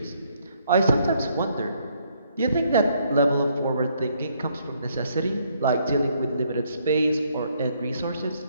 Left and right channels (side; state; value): both; inverted; correlation -0.69